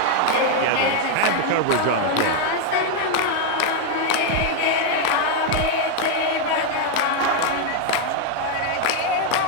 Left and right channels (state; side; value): different; both; correlation 0.01